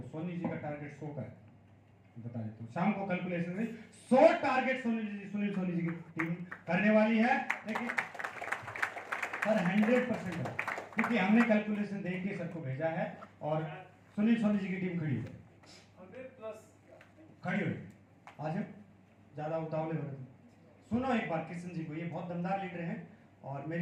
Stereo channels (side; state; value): both; identical; correlation 1.00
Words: सोनी जी का टारगेट 100 का है, बता देता हूँ। शाम को कैलकुलेशन में 100 टारगेट सुनील सोनी जी की टीम करने वाली है। लेकिन सर 100% है, क्योंकि हमने कैलकुलेशन देख के सर को भेजा है, और सुनील सोनी जी की टीम खड़ी है, 100+ खड़ी हुई। आज ज्यादा उतावले हो रहे थे। सुनो एक बार किशन जी को, ये बहुत दमदार लीडर हैं और